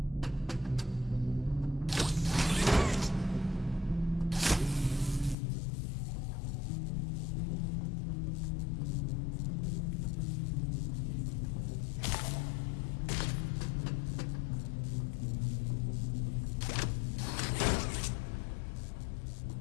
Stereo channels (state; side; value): drops out; right; at 5.4 s